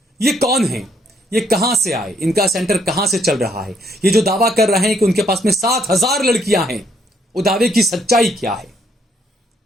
ये कौन हैं? ये कहां से आए? इनका सेंटर कहां से चल रहा है? ये जो दावा कर रहे हैं कि उनके पास में 7,000 लड़कियां हैं, वो दावे की सच्चाई क्या है?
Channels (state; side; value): normal; both; correlation 0.71